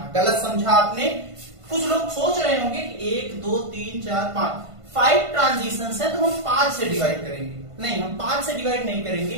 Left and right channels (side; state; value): left; late; 1.5 ms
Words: गलत समझा आपने। कुछ लोग सोच रहे होंगे कि 1 2 3 4 5 ट्रांजिशन है तो हम 5 से डिवाइड करेंगे। नहीं, हम 5 से डिवाइड नहीं